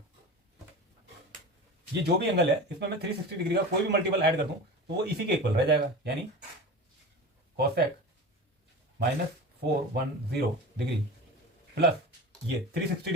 ये जो भी एंगल है इसमें मैं 360 डिग्री का कोई भी मल्टीपल ऐड कर दूं तो वो इसी के इक्वल रह जाएगा। यानी कॉसेक -410 डिग्री प्लस ये 360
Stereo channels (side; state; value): both; normal; correlation 0.32